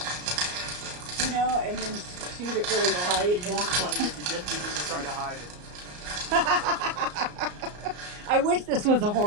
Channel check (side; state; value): left; late; 34 ms